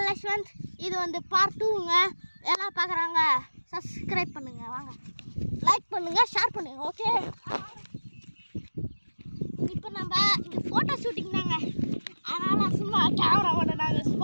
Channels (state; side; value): inverted; both; correlation -1.00